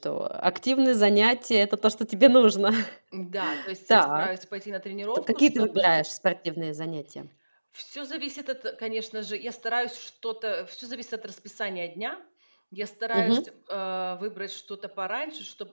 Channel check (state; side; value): inverted; both; correlation -1.00